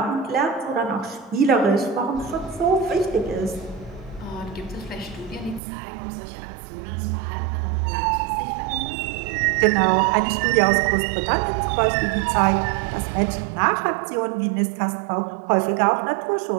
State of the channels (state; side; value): drops out; left; at 5.6 s